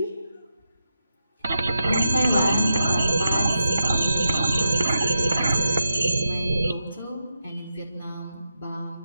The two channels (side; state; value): both; inverted; correlation -0.87